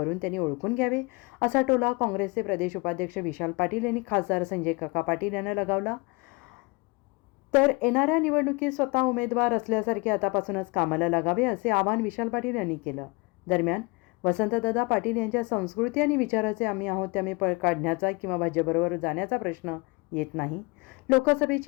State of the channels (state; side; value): quieter; right; 27.5 dB